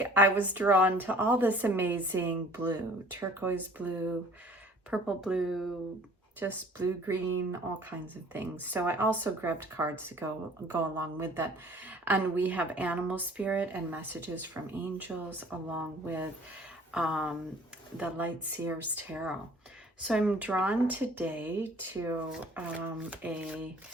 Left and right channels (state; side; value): normal; both; correlation 0.51